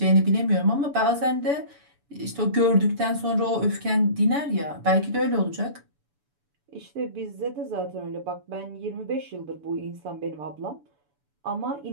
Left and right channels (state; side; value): late; left; 7.0 ms